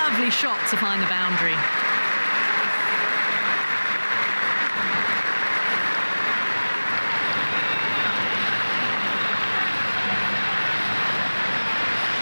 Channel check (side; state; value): both; inverted; correlation -1.00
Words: shot to find the boundary.